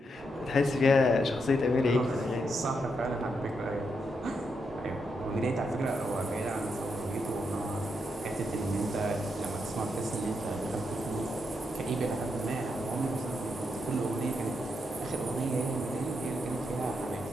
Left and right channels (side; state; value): both; normal; correlation 0.82